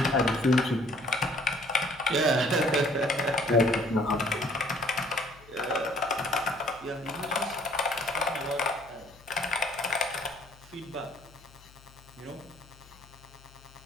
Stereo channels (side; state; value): left; noise; hum, 24 dB below the sound